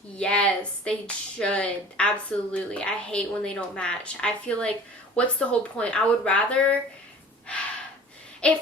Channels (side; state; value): both; normal; correlation 0.43